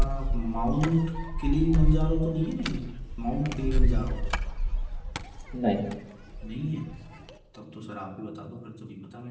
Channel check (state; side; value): identical; both; correlation 1.00